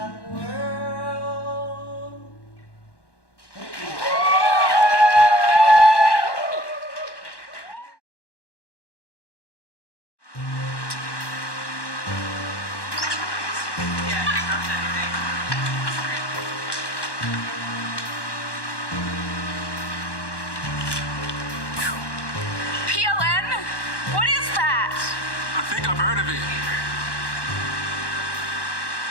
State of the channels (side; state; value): right; late; 1.1 ms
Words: world. PLN? What is that? I think I've heard of it.